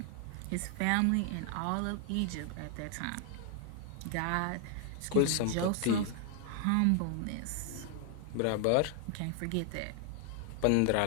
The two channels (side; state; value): both; different; correlation 0.00